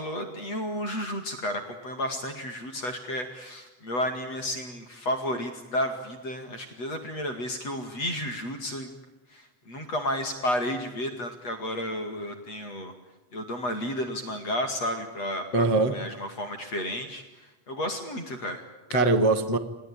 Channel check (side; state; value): right; late; 8.2 ms